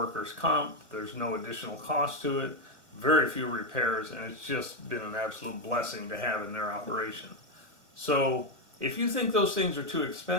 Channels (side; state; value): left; late; 1.5 ms